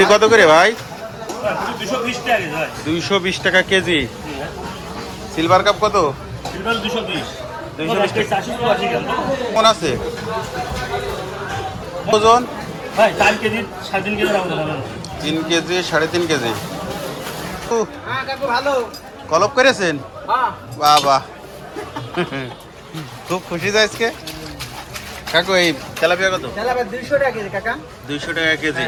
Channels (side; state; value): both; identical; correlation 1.00